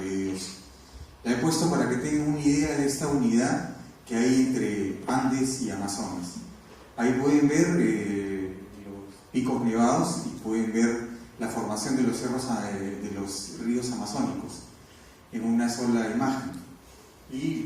de Dios. La he puesto para que tengan una idea de esta unidad que hay entre Andes y Amazonas. Ahí pueden ver los picos nevados y pueden ver la formación de los cerros de los ríos amazónicos en una sola imagen.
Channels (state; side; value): identical; both; correlation 1.00